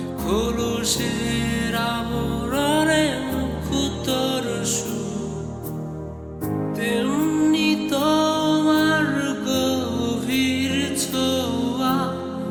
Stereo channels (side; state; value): both; identical; correlation 1.00